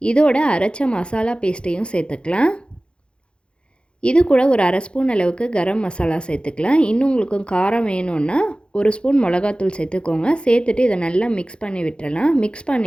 இதோட அரைச்ச மசாலா பேஸ்ட்டையும் சேர்த்துக்கலாம். இது கூட ஒரு 1/2 ஸ்பூன் அளவுக்கு கரம் மசாலா சேர்த்துக்கலாம். இன்னும் உங்களுக்கு காரம் வேணும்னா 1 ஸ்பூன் மிளகாத்தூள் சேர்த்துக்கோங்க. சேர்த்துட்டு இதை நல்லா மிக்ஸ் பண்ணி விட்டுறலாம். மிக்ஸ்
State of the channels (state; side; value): late; right; 0.055 ms